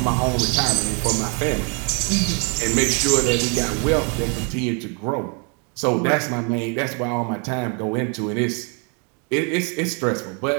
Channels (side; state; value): left; quieter; 36.0 dB